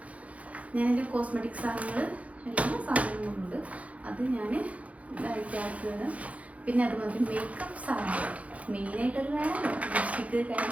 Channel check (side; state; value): left; late; 0.066 ms